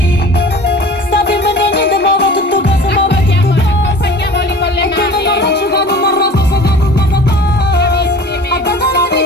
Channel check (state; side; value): normal; both; correlation 0.42